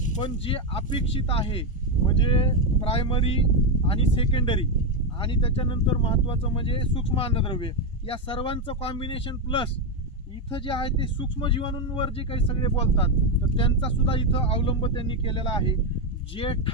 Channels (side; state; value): both; normal; correlation 0.06